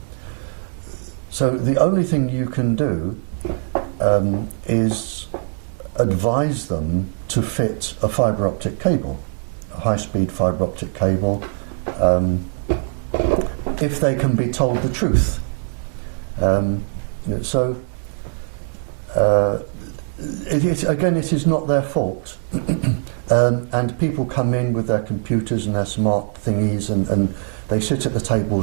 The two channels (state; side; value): silent; left; digital silence